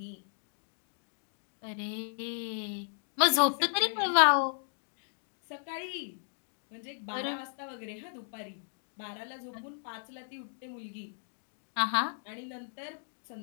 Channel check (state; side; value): silent; right; digital silence